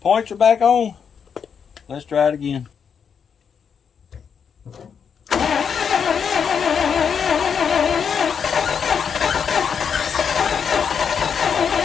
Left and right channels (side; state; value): right; quieter; 6.9 dB